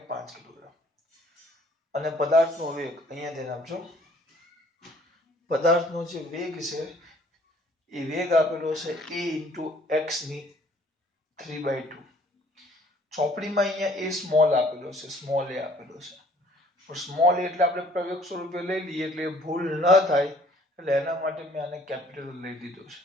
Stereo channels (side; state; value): both; normal; correlation 0.58